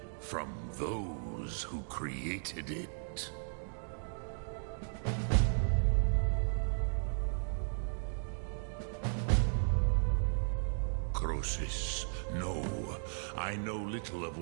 from those who created it. Croesus, no. I know little of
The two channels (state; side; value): silent; left; digital silence